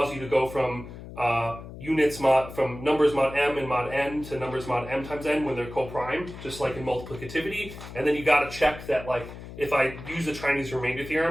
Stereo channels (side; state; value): left; noise; hum, 13 dB below the sound